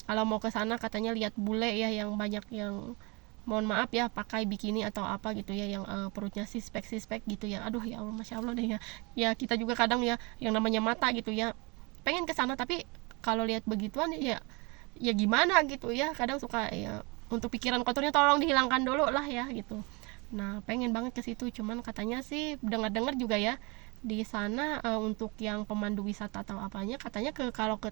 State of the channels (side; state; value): left; quieter; 28.4 dB